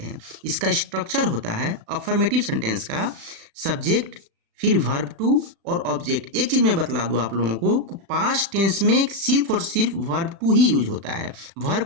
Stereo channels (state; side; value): late; left; 36 ms